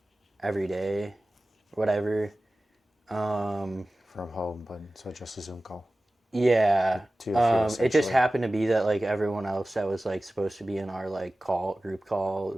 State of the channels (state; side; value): normal; both; correlation 0.96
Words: every day, whatever. From home, but so just a Zoom call. Yeah. Two of you, It just essentially. happened to be that like everyone else that was like supposed to be in our like group call